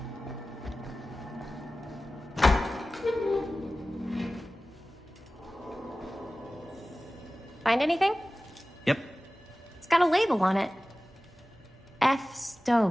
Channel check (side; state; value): both; normal; correlation 0.96